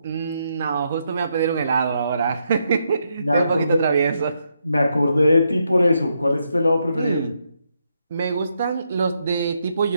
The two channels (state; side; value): inverted; both; correlation -0.80